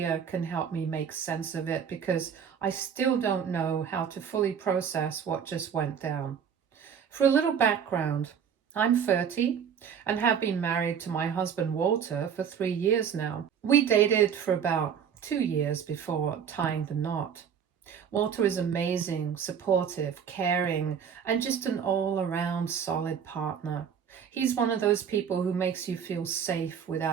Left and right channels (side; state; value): left; quieter; 7.6 dB